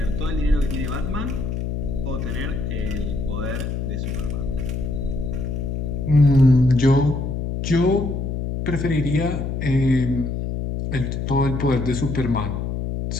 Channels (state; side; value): noise; left; hum, 3 dB below the sound